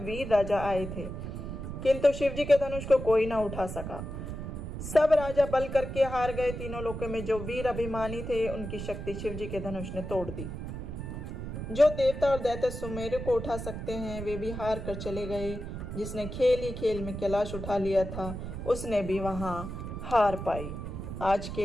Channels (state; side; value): noise; right; rumble, 7 dB below the sound